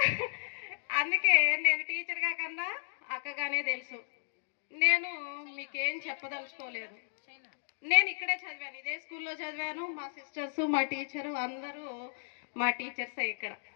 అందుకే నేను టీచర్గా కన్నా అక్కగానే తెలుసు. నేను మీకేం చెప్పదలుచుకోలేదు. నేను ఇక్కడే చదివాను, ఇదే స్కూల్లో చదివాను. మా సిస్టర్స్, మా టీచరు అందరూ మా టీచర్సే. ఇక్కడ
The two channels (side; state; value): right; silent; digital silence